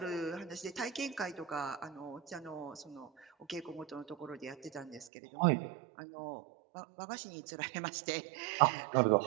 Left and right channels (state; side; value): drops out; left; at 5.1 s